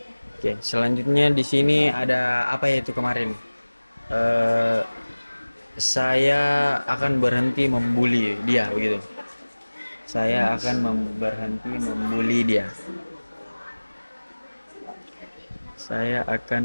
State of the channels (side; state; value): both; inverted; correlation -1.00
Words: Oke, selanjutnya di sini ada apa ya itu kemarin? Saya akan berhenti membuli dia begitu. Saya akan berhenti membuli dia. Saya